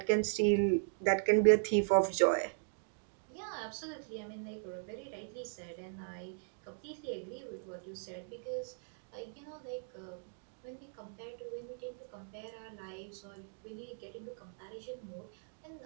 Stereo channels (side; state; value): left; silent; digital silence